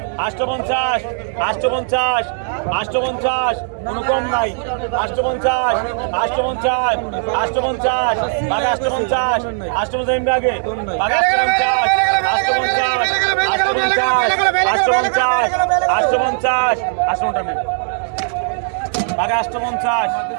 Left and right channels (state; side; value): silent; left; digital silence